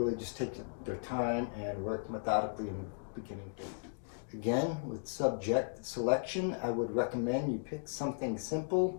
just take their time and work methodically in the beginning. Again, with subject selection, I would recommend you pick something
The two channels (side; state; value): right; silent; digital silence